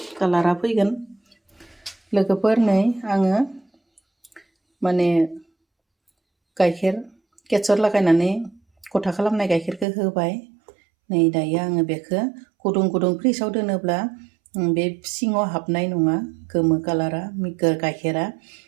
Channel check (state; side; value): drops out; left; at 9.9 s